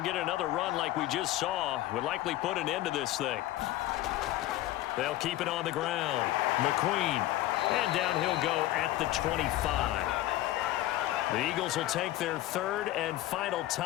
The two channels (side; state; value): right; quieter; 15.4 dB